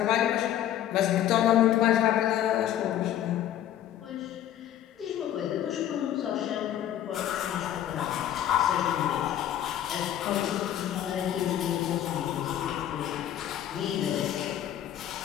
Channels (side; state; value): right; quieter; 11.5 dB